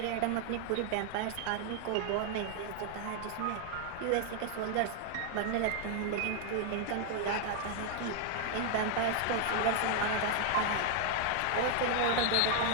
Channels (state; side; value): different; both; correlation 0.00